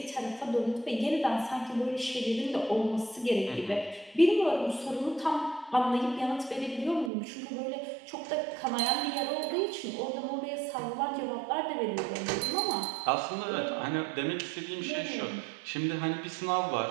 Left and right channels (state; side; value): drops out; left; at 7.1 s